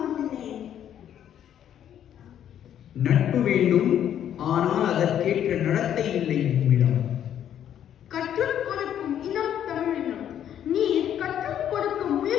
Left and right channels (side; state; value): right; quieter; 10.1 dB